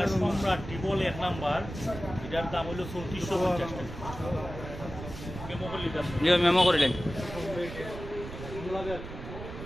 সম্রাট টিবল এক নাম্বার এটার দাম হলো 3450 টাকা মেমো করিলেন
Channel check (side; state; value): right; noise; rumble, 10 dB below the sound